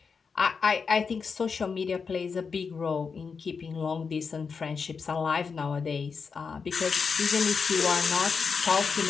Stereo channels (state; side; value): quieter; right; 5.5 dB